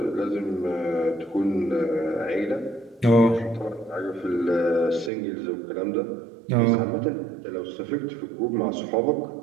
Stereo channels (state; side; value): drops out; left; at 5.1 s